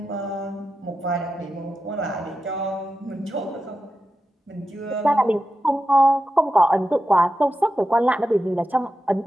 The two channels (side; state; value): both; normal; correlation 0.90